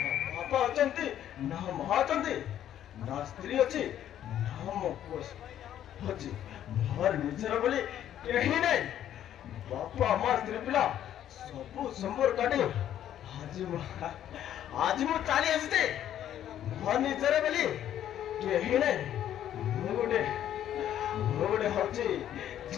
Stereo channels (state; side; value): quieter; right; 11.0 dB